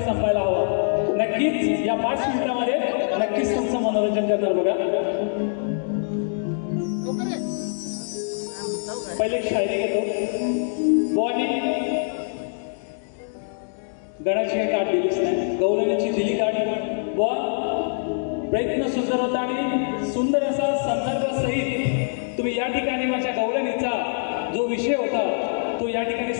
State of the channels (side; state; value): right; silent; digital silence